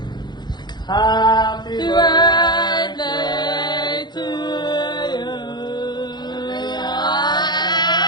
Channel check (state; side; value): late; right; 0.21 ms